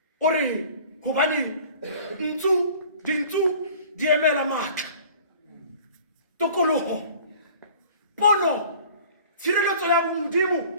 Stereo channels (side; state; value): both; inverted; correlation -0.47